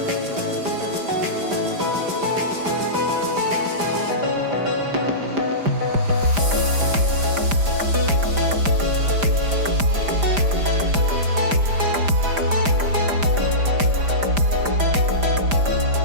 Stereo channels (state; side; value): late; left; 5.0 ms